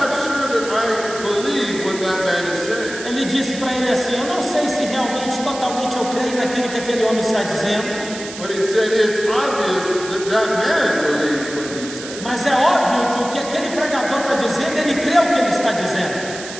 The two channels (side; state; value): right; noise; hiss, 12 dB below the sound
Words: sure that I believe what that man is saying. ele disse para ele assim, eu não sei se realmente, totalmente eu creio naquilo que aquele homem está dizendo, But he said, it's obvious that that man believes what he's saying. mas é óbvio que o que aquele pregador está dizendo, ele crê o que ele está dizendo.